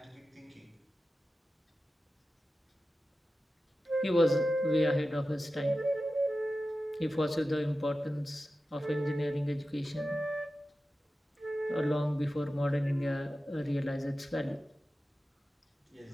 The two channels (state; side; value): normal; both; correlation 0.93